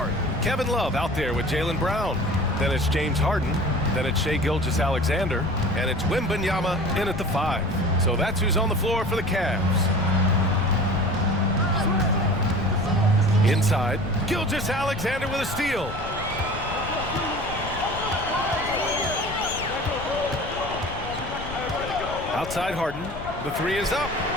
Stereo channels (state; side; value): noise; left; rumble, 11 dB below the sound